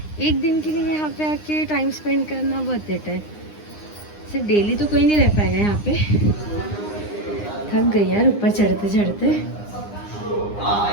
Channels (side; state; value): right; late; 9.8 ms